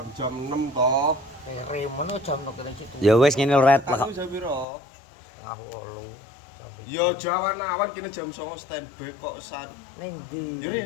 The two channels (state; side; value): drops out; right; at 4.7 s